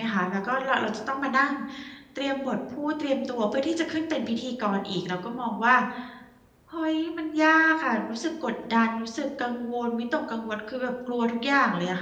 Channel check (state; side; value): identical; both; correlation 1.00